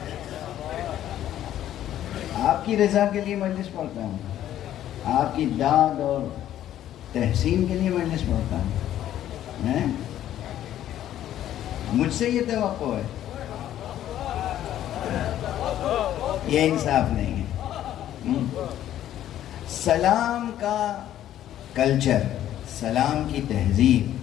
آپ کی رضا کے لیے مجلس پڑھتا ہوں، آپ کی داد اور تحسین کے لیے مجلس پڑھتا ہوں۔ مجھ سے یہ توقع ہے، یہ انصاف نہیں ہے۔ سلام کا کلچر، سلام کی تہذیب،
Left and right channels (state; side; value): quieter; right; 12.0 dB